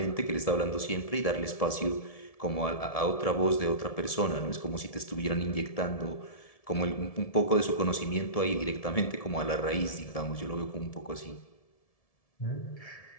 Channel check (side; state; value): right; late; 1.7 ms